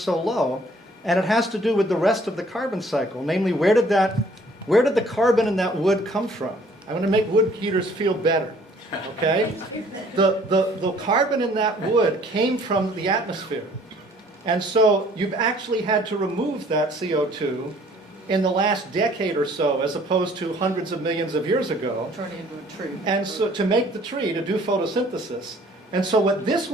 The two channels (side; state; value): both; normal; correlation 0.57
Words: so low, and it has to do with the rest of the carbon cycle. Namely, where did the carbon in that wood come from? I want to make wood heaters feel better, okay? The carbon in that wood came from the atmosphere. And so you've actually had to remove that CO2 in the last decade or so, as opposed to hundreds of millions of years ago. Turn it into a tree. And so to make the tree, to do photosynthesis. And so what this